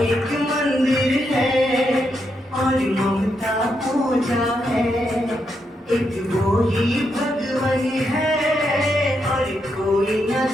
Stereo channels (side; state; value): both; normal; correlation 0.81